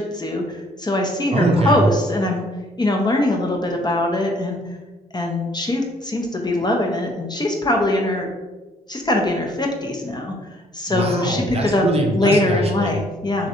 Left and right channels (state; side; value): normal; both; correlation 0.63